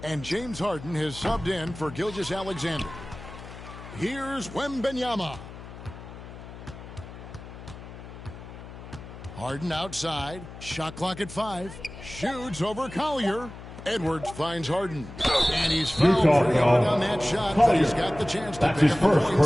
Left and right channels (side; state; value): left; noise; hum, 14 dB below the sound